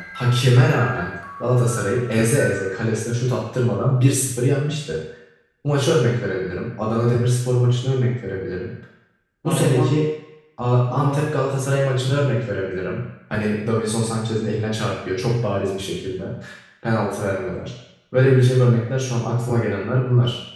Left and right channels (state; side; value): identical; both; correlation 1.00